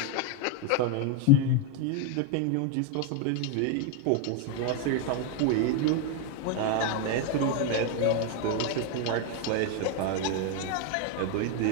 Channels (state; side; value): different; both; correlation 0.01